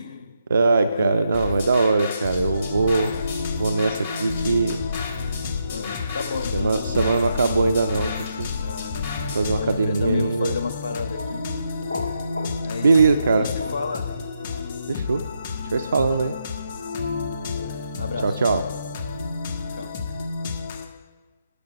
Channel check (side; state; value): both; inverted; correlation -0.81